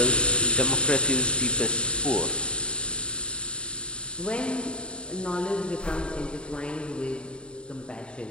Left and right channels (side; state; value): right; late; 0.053 ms